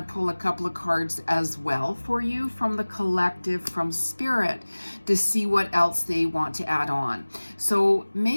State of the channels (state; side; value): inverted; both; correlation -1.00